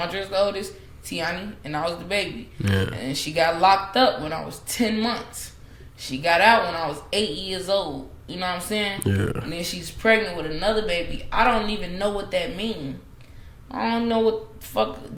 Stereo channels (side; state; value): both; identical; correlation 1.00